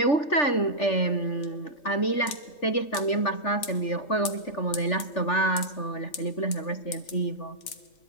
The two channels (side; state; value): right; late; 3.9 ms